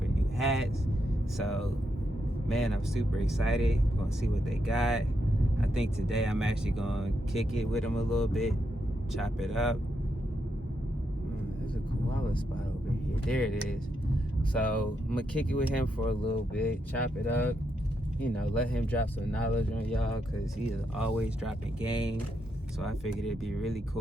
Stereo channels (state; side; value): normal; both; correlation 0.81